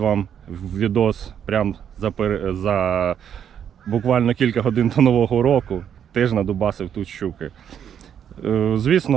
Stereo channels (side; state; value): left; quieter; 8.8 dB